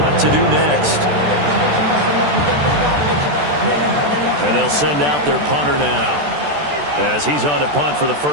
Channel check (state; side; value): late; left; 14 ms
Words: what to do next. And they'll send out their punter now as he's on to punt for the